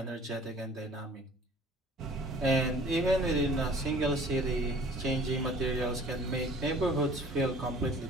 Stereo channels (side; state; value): both; normal; correlation 0.50